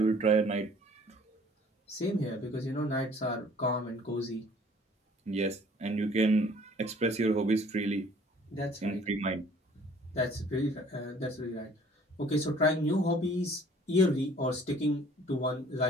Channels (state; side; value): normal; both; correlation 0.54